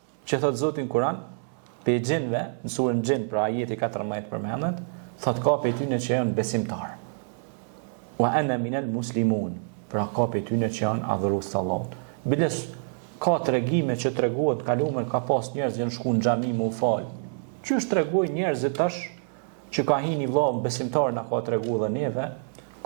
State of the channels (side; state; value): left; silent; 60 dB below the other